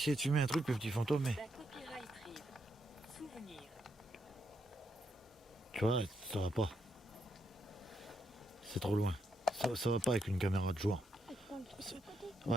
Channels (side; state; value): both; normal; correlation 0.79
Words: de filmer un truc, le petit fantôme, mais... Da copyright rive. Souvenir. Tu vois, ça va pas. C'est trop loin. Ça va pas avec une caméra de jour.